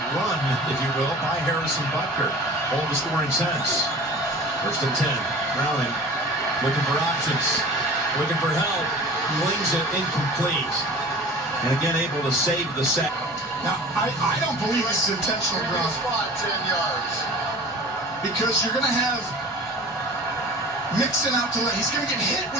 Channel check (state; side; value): normal; both; correlation 0.40